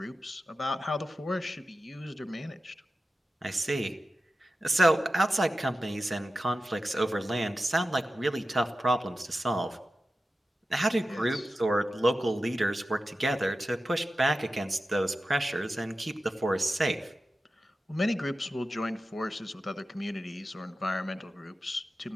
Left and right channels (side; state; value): both; normal; correlation 0.93